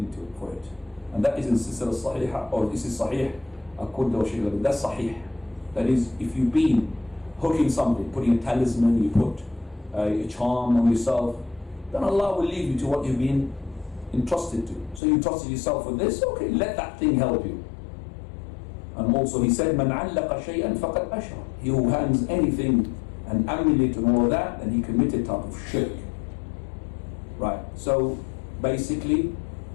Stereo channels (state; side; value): drops out; right; at 15.0 s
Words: for it. And that is in Silsila Sahih, or this is Sahih, according to Sheikh. That's Sahih. That is, if you've been hooking something, putting a talisman, you put a charm on yourself, then Allah will lead you to what you've been entrusted to. So you trusted yourself with this, okay, let that thing help you. And also he said, مَنْ عَلَّقَ شَيْئًا فَقَدْ أَشْرَكَ. He who hangs anything, an amulet and all of that, then he committed type of shirk. Right, so basically